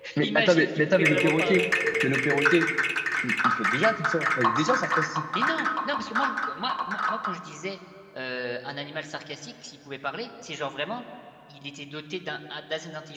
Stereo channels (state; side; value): identical; both; correlation 1.00